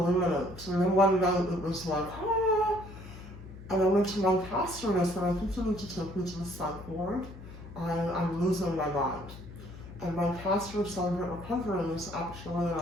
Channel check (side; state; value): left; noise; hum, 15 dB below the sound